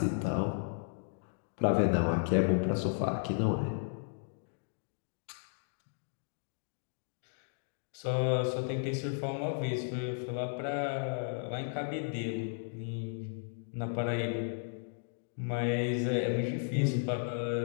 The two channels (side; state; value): right; silent; digital silence